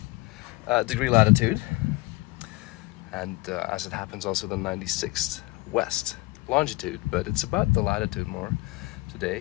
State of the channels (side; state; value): right; quieter; 22.2 dB